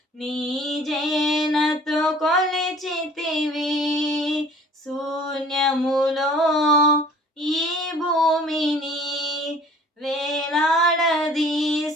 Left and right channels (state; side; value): normal; both; correlation 0.51